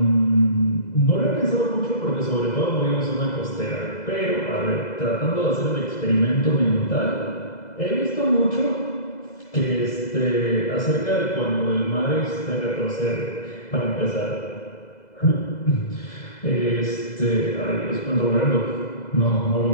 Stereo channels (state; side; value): late; right; 2.0 ms